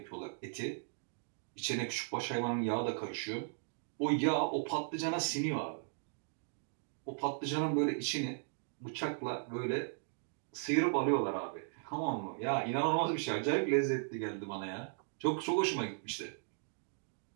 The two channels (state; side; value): silent; left; digital silence